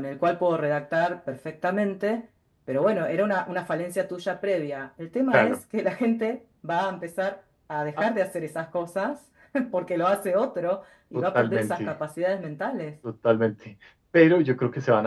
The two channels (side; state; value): both; identical; correlation 1.00